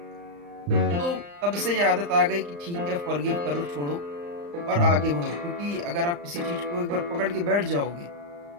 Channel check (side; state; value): left; late; 35 ms